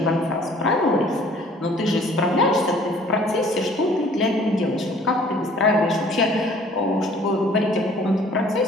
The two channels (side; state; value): both; normal; correlation 0.54